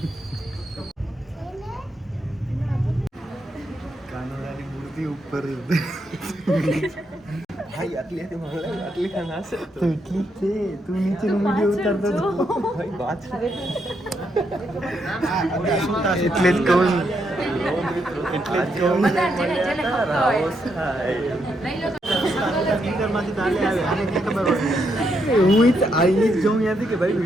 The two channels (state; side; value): normal; both; correlation 0.79